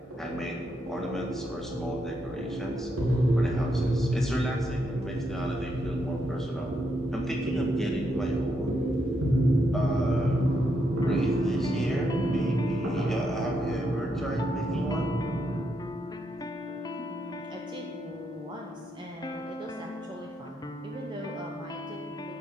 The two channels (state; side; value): normal; both; correlation 0.79